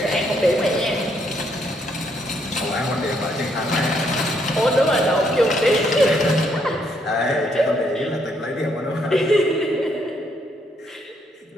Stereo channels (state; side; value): normal; both; correlation 0.72